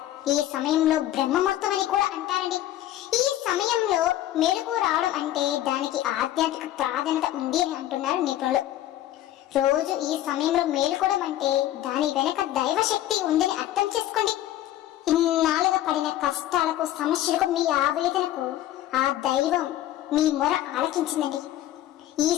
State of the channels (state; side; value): quieter; right; 13.3 dB